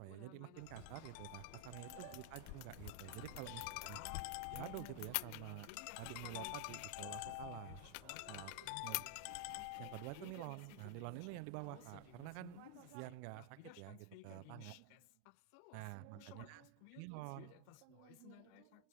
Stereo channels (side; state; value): both; different; correlation 0.00